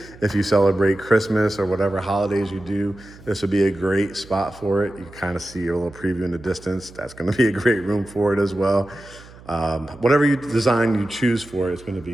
If you celebrate Christmas or whatever holidays you do, this would be a great spot for it. You kind of see a little preview in the distance. That's going to be a great room for it as well. Whatever you design you choose for it, it's going to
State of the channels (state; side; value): noise; right; hum, 21 dB below the sound